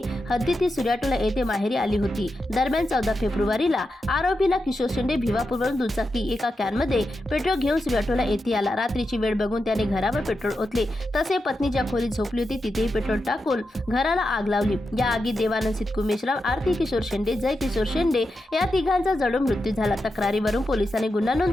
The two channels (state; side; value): normal; both; correlation 0.88